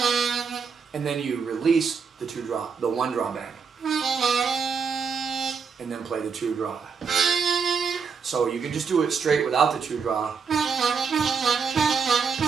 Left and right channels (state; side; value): quieter; left; 5.8 dB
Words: And then you release the 1 draw bend. And then play the 2 draw. So you can just do it straight without the 2 draw.